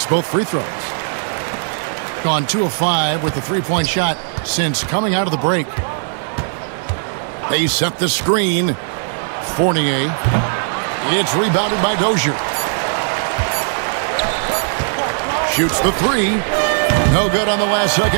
both free throws. Gone 2 of 5 with the three-point shot since coming out of the break. They set the screen. Fournier. It's rebounded by Dozier. Shoots the three. No good on the last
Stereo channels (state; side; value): silent; left; 67 dB below the other